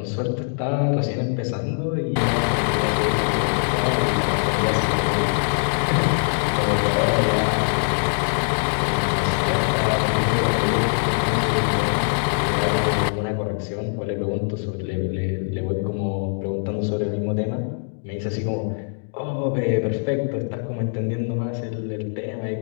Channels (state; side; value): silent; right; 64 dB below the other